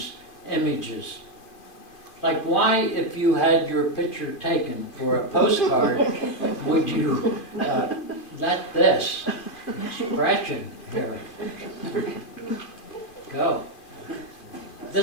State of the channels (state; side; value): late; right; 2.5 ms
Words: images. Like, why, if you had your picture taken for a postcard, would you let this expression here go?